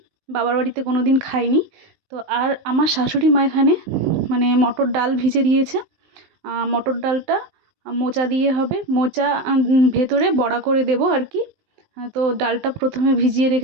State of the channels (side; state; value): left; late; 20 ms